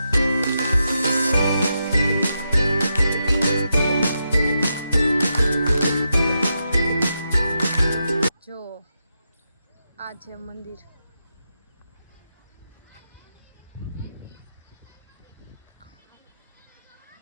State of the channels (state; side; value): inverted; both; correlation -0.86